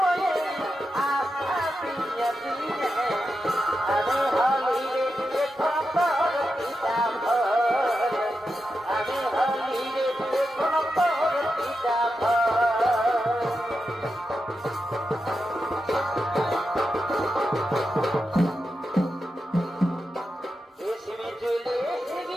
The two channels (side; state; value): both; normal; correlation 0.88